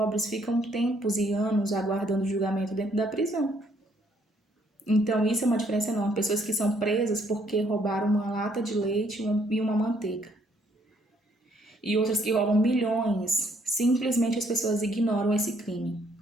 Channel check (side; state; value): both; normal; correlation 0.67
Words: ficam tempos e anos aguardando julgamento dentro da prisão. Então isso é uma diferença enorme. Pessoas que são presas porque roubaram uma lata de leite e uma manteiga. E outras que roubam milhões. Simplesmente as pessoas ignoram esse crime.